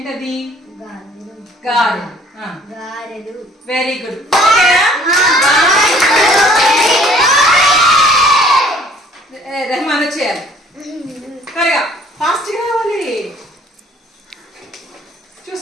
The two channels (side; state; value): both; normal; correlation 0.57